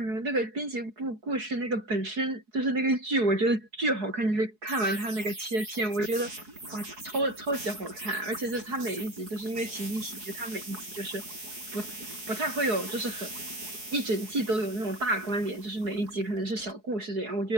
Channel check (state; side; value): late; left; 4.7 ms